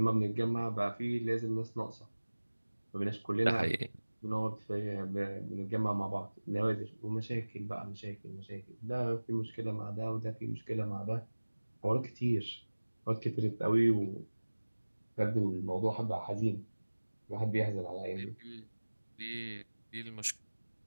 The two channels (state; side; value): inverted; both; correlation -1.00